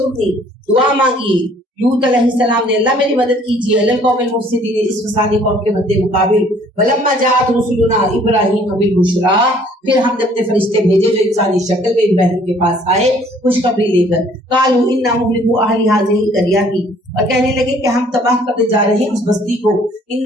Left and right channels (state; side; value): normal; both; correlation 0.58